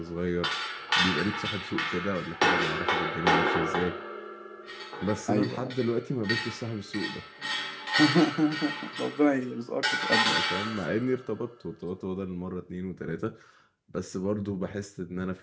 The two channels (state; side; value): identical; both; correlation 1.00